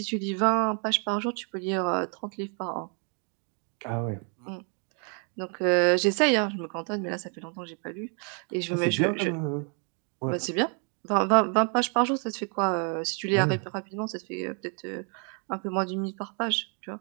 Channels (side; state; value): left; quieter; 39.4 dB